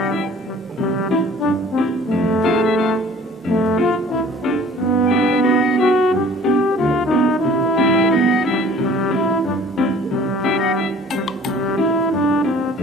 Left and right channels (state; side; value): normal; both; correlation 0.50